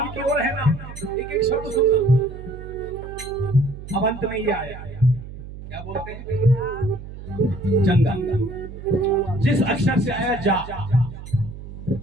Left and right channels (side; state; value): right; noise; hum, 12 dB below the sound